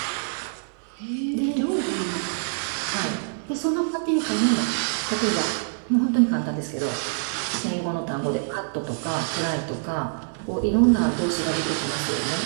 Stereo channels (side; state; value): left; silent; digital silence